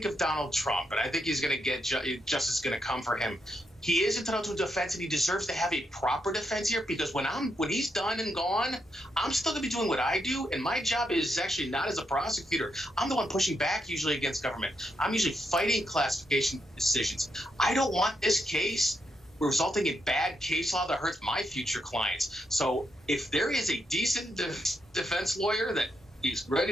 of Donald Trump, and I think he's going to get justice going to come for him, he is entitled to a defense, and he deserves to have a proper defense here, because when he's done and gone, I'm still going to be doing what I do, and my job is actually not as a prosecutor. I'm the one pushing back usually against government. I'm usually fighting classification decisions. I don't want this case resulting in bad case law that hurts my future clients. So if there is a decent defense lawyer that is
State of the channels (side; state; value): both; normal; correlation 0.81